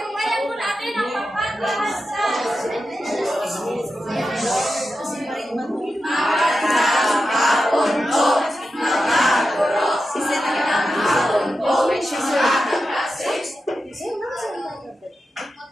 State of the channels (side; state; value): both; normal; correlation 0.90